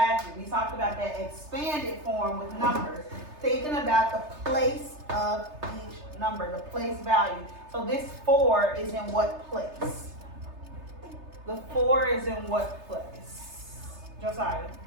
We talked about that expanded form with numbers, thinking about the place of each number, the place value. So this 4 is in what place? The 4 is in what place? Josiah.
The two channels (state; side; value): late; left; 3.3 ms